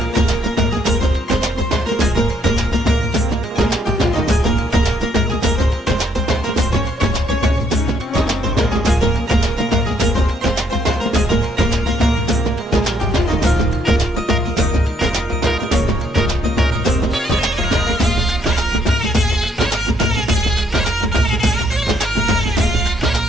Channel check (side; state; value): both; normal; correlation 0.70